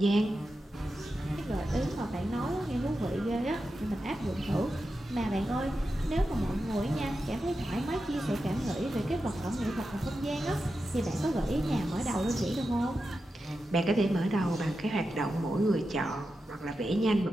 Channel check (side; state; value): both; normal; correlation 0.90